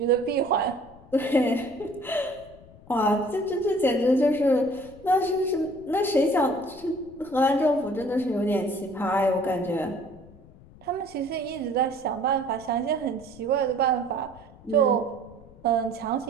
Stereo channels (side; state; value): left; noise; rumble, 22 dB below the sound